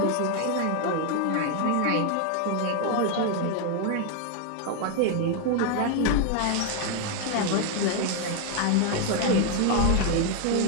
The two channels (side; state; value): both; different; correlation 0.01